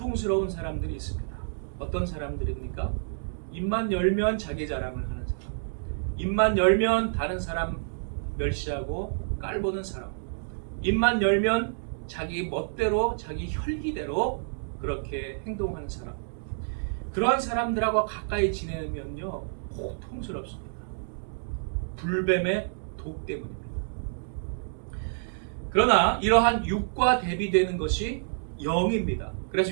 사람들이 있습니다. 어떤 사람들입니까? 입만 열면 자기 자랑을 하는 사람, 입만 열면 다른 사람 멸시하고 깔보는 사람, 입만 열면 자기 멋대로 자기 혈기대로 그렇게 행동하는 사람, 그러한 사람들하고 가까이 지내면요 고통스럽습니다. 불뱀의 독 때문입니다. 그러나 이러한 육과 대비되는 것이 영입니다.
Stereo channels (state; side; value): silent; left; digital silence